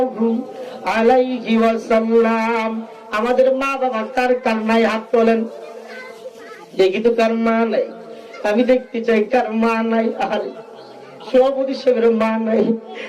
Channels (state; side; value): identical; both; correlation 1.00